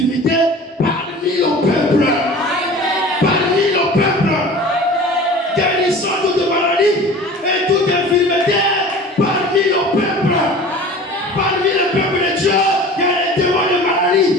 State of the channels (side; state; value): both; normal; correlation 0.41